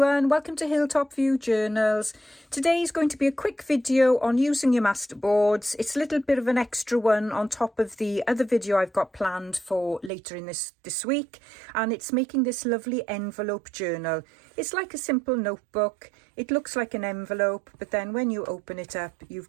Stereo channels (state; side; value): drops out; left; at 10.1 s